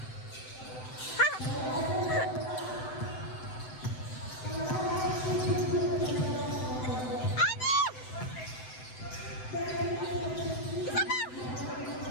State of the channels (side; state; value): right; late; 7.8 ms